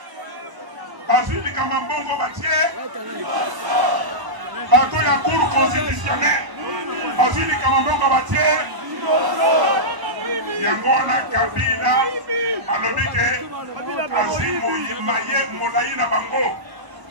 bazwi likambo mbongo batie bato ya cour constitutionnelle bazwi likambo mbongo batie yango wana Kabila alobi ke azwi molai na bango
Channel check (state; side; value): late; left; 1.0 ms